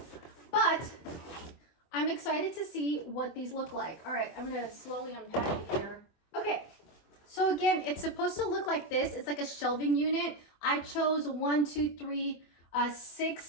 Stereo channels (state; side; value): late; right; 24 ms